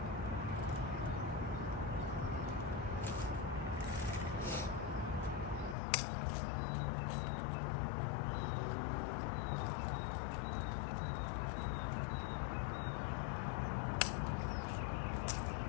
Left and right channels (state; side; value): drops out; right; at 5.8 s